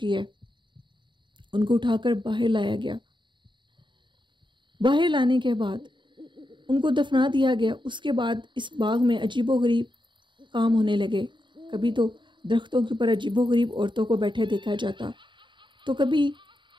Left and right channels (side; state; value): left; late; 0.23 ms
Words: ہے۔ ان کو اٹھا کر باہر لایا گیا۔ باہر لانے کے بعد ان کو دفنا دیا گیا۔ اس کے بعد اس باغ میں عجیب و غریب کام ہونے لگے۔ کبھی تو درختوں کے اوپر عجیب و غریب عورتوں کو بیٹھے دیکھا جاتا، تو کبھی